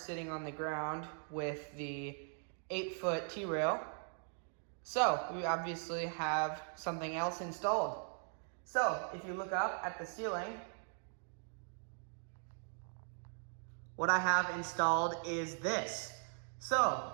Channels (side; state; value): left; silent; 51 dB below the other